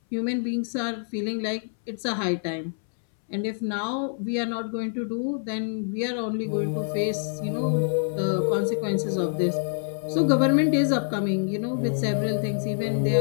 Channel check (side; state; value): right; silent; 61 dB below the other